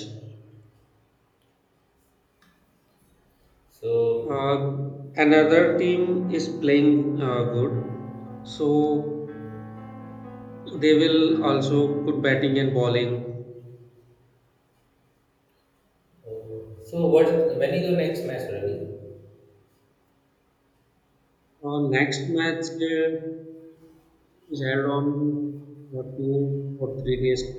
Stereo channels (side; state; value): both; identical; correlation 1.00